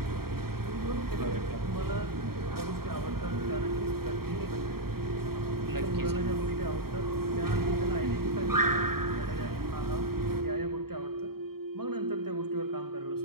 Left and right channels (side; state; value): left; late; 0.94 ms